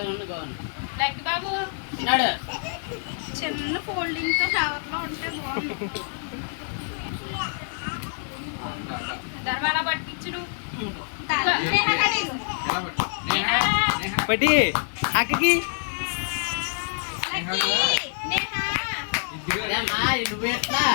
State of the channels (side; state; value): right; silent; 57 dB below the other